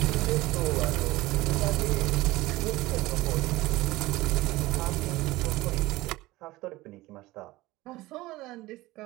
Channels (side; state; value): left; quieter; 19.1 dB